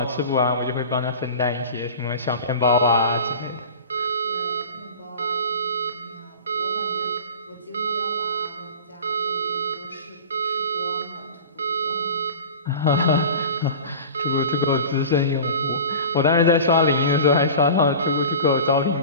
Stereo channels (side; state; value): both; inverted; correlation -0.36